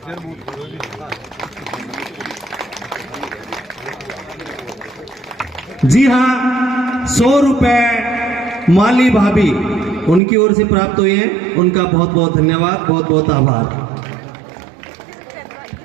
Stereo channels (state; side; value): drops out; left; at 10.2 s